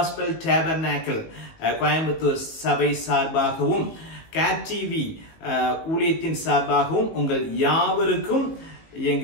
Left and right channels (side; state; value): right; late; 19 ms